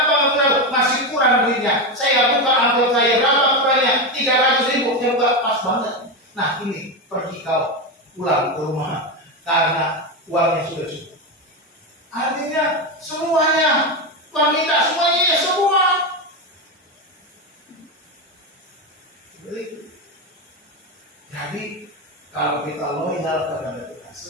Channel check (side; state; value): both; normal; correlation 0.13